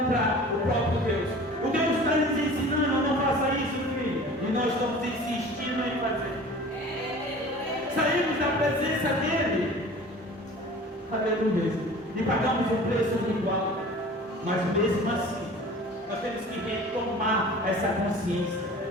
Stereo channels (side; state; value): both; normal; correlation 0.42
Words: o próprio Deus. O Deus está nos ensinando, não faça isso, filho. E nós estamos insistindo em fazer. Saímos da presença dele. Aleluia. E pagamos um preço igual. Mas mesmo assim, nós temos que retomar essa consciência